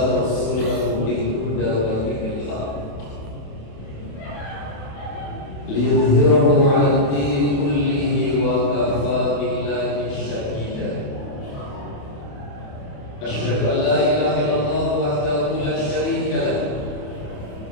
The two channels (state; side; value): late; right; 28 ms